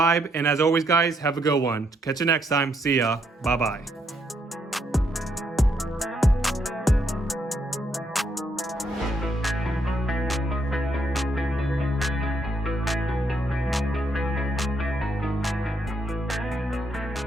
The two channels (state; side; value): normal; both; correlation 0.75